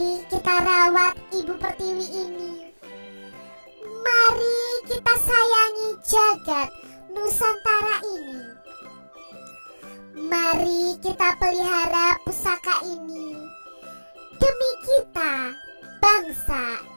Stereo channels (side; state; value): both; inverted; correlation -1.00